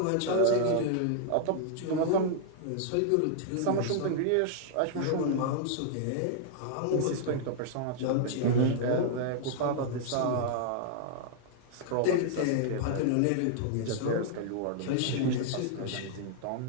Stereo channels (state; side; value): different; both; correlation -0.01